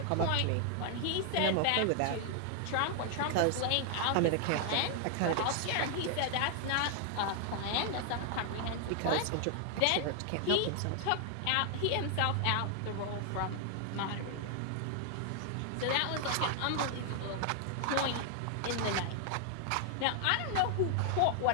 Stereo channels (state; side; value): different; both; correlation 0.00